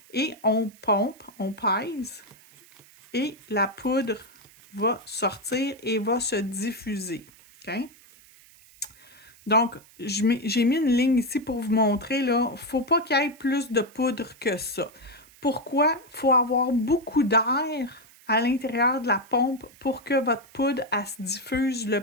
et on pompe, on pèse et la poudre va sortir et va se diffuser. Okay? Donc, j'ai mis une ligne ici pour vous montrer, là, il ne faut pas qu'il y ait plus de poudre que ça. Pourquoi? Il faut avoir beaucoup d'air à l'intérieur de la pompe pour que votre poudre, elle se diffuse le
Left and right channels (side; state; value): right; noise; hiss, 26 dB below the sound